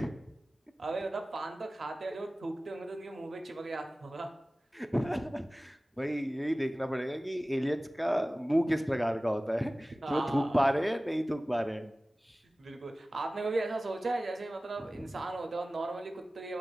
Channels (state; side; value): normal; both; correlation 0.97